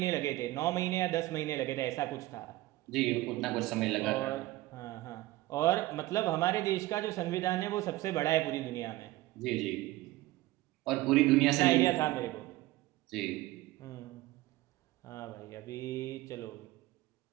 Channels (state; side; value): quieter; left; 17.5 dB